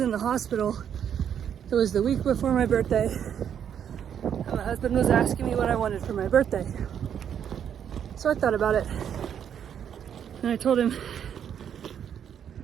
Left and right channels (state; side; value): quieter; left; 8.7 dB